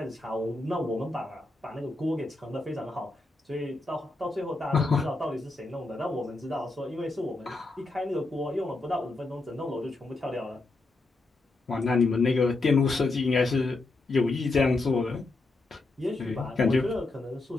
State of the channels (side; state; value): right; quieter; 3.2 dB